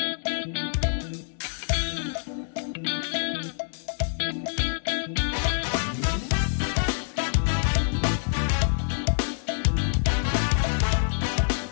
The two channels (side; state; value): right; silent; digital silence